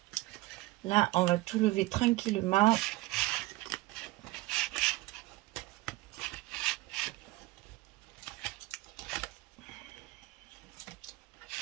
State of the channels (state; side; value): quieter; left; 20.1 dB